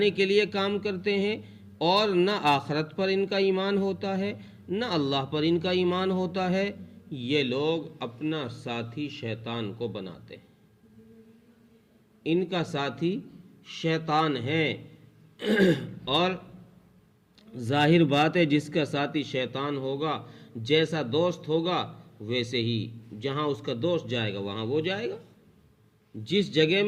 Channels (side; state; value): both; identical; correlation 1.00